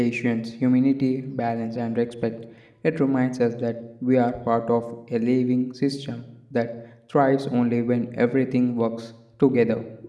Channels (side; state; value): both; identical; correlation 1.00